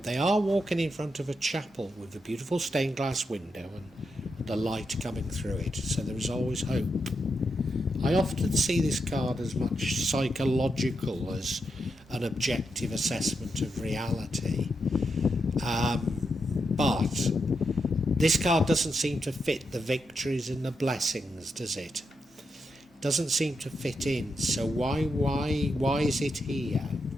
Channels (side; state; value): both; normal; correlation 0.84